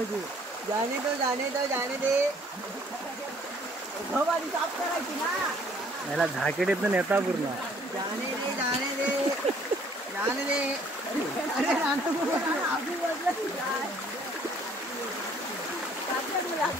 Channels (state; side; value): normal; both; correlation 0.60